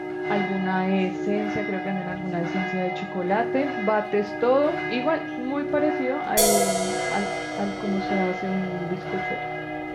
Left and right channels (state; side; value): identical; both; correlation 1.00